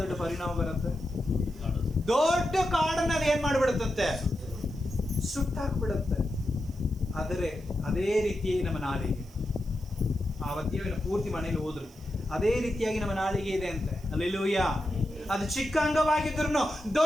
ದೊಡ್ಡ ಪರಿಣಾಮ ಬರುತ್ತೆ? ದೊಡ್ಡ ಕಾಡನ್ನ ಅದು ಏನ್ ಮಾಡ್ಬಿಡುತ್ತಂತೆ? ಸುಟ್ಟಾಕ್ಬಿಡುತ್ತೆ. ಆದರೆ ಅದೇ ರೀತಿಯಾಗಿ ನಮ್ಮ ನಾಲಿಗೆ, ಆ ವದ್ಯವಿನ ಪೂರ್ತಿ ಮನೇಲಿ ಹೋದ್ರು ಅದೇ ರೀತಿಯಾಗಿ ನಮ್ಮ ನಾಲಿಗೆ ಇದೆ ಅಂತೆ. ಹಲ್ಲೆಲೂಯಾ. ಅದು ಚಿಕ್ಕ ಅಂಗವಾಗಿದ್ರು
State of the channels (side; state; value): right; noise; hiss, 26 dB below the sound